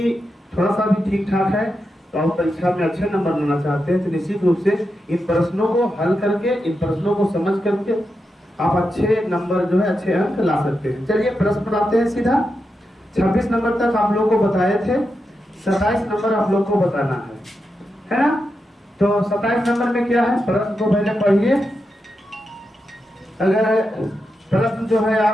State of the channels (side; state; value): both; normal; correlation 0.87